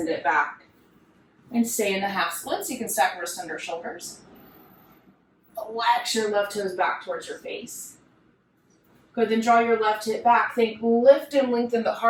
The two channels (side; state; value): both; identical; correlation 1.00